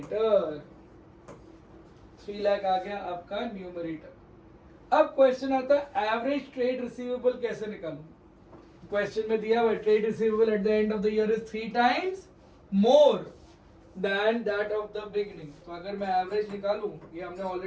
3 lakh आ गया आपका न्यूमरेटर. अब क्वेश्चन आता है एवरेज ट्रेड रिसीवेबल कैसे निकालूं. क्वेश्चन में दिया हुआ trade receivable at the end of the year is 3 times more than that of the beginning. तो अगर मैं एवरेज निकालूं, ये हमने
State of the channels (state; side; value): identical; both; correlation 1.00